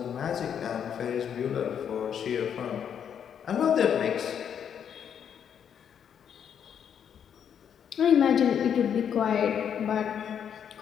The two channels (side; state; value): right; quieter; 8.3 dB